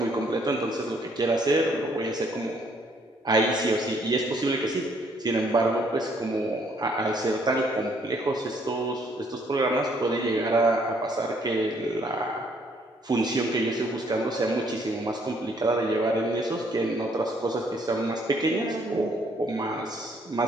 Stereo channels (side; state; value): both; normal; correlation 0.66